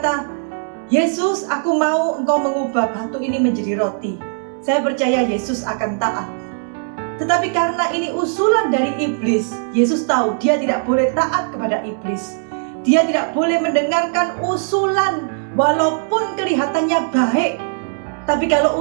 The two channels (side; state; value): left; silent; 67 dB below the other